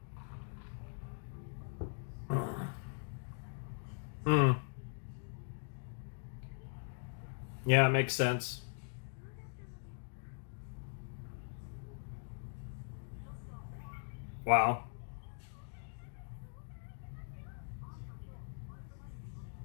Hmm. Yeah, it makes sense. Wow.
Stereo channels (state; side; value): silent; right; digital silence